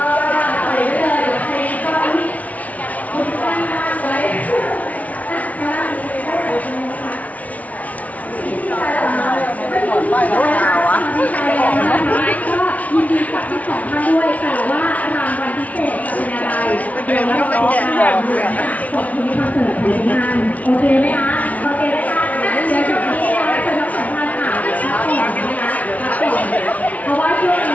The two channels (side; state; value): right; late; 0.070 ms